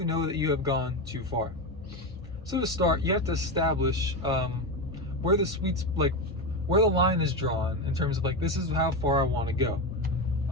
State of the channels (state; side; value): normal; both; correlation 0.15